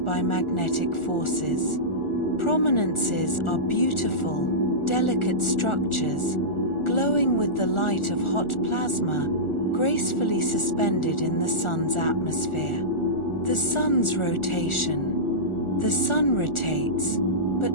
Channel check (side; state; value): right; late; 1.4 ms